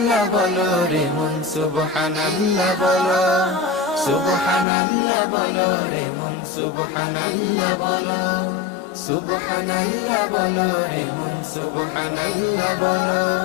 বলো রে মন, সুবহানাল্লাহ বলো। সুবহানাল্লাহ বলো রে মন, সুবহানাল্লাহ বলো। সুবহানাল্লাহ বলো রে মন, সুবহানাল্লাহ বলো।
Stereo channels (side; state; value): right; drops out; at 4.7 s